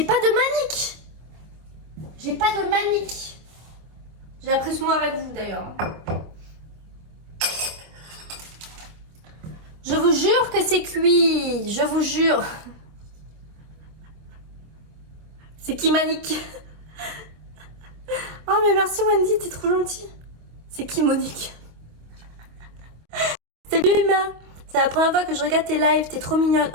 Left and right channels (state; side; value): late; left; 25 ms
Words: pas de manique. J'ai pas de manique. J'ai appris ce mot avec vous d'ailleurs. Je vous jure que c'est cuit. Je vous jure. C'est qui Manique? Oh mais merci Wendy, t'es trop gentille. C'est qui Monique? Salut Emma. C'est la première fois que je regarde tes lives, t'es trop mignonne.